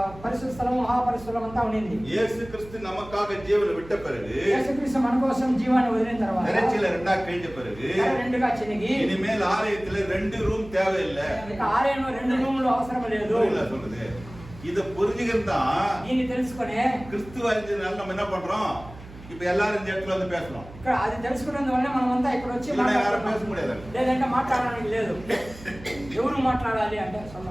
పరిశుద్ధ స్థలం మహాపరిశుద్ధం అంతా ఉండింది. இயேசு கிறிஸ்து நமக்காக ஜீவனை விட்ட பிறகு, యేసు క్రీస్తు మన కోసం జీవాన్ని వదిలిన తర్వాత திரைச்சீலை 2ஆ கிழிஞ்ச பிறகு రెండుగా చినిగి இனிமேல் ஆலயத்துல 2 ரூம் தேவையில்லை. ఇక ఆలయంలో 2 రూములు అవసరం లేదు. சொல்லுது. இத புரிஞ்சுக்கிறதா దీన్ని తెలుసుకునే கிறிஸ்துவ அறிஞ்சதுனால நம்ம என்ன பண்றோம்? இப்ப எல்லாரும் இந்த இடத்துல வந்து பேசணும். ఇక్కడ అది తెలుసుకున్నందు వల్ల మనం అంతా ఇక్కడ వచ్చి யாரும் பேச முடியாது. లేదంటే మాట్లాడడానికి లేదు. ఎవరు మాట్లాడాలి అంటే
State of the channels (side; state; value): right; noise; hum, 17 dB below the sound